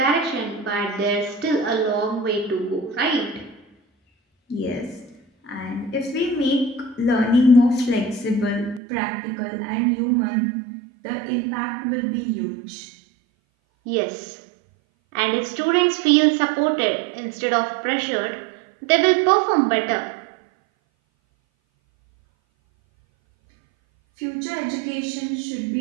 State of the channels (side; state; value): left; drops out; at 8.8 s